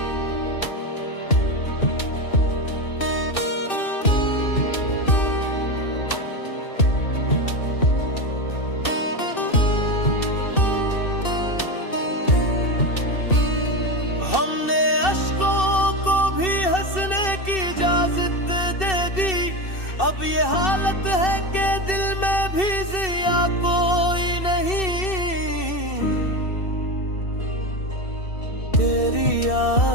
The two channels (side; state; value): right; late; 2.6 ms